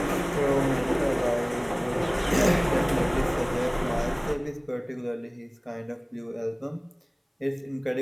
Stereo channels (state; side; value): identical; both; correlation 1.00